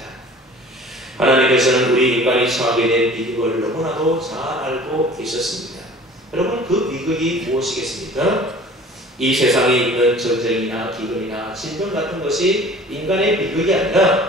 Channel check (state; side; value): normal; both; correlation 0.46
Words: 하나님께서는 우리 인간이 처하게 된 비극을 너무나도 잘 알고 계셨습니다. 여러분, 그 비극이 무엇이겠습니까? 이 세상에 있는 전쟁이나 기근이나 질병 같은 것이 인간의 비극이